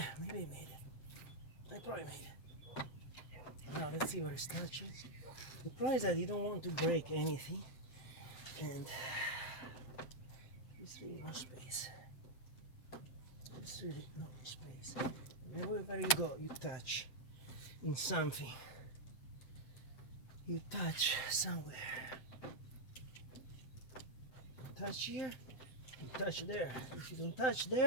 maybe I made it. I probably made it. Now let's see where it's touching. The problem is that you don't want to break anything, and there's really no space. There's really no space. And wherever you go, you touch in something. You touch somewhere. You touch here, you touch there. If you don't touch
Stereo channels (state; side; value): late; right; 7.7 ms